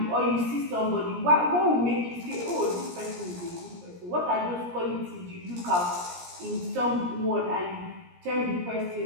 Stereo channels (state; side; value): late; left; 17 ms